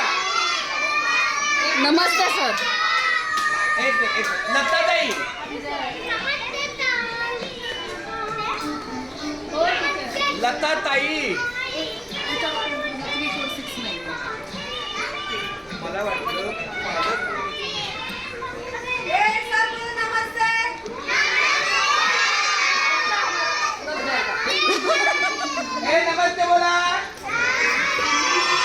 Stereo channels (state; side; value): identical; both; correlation 1.00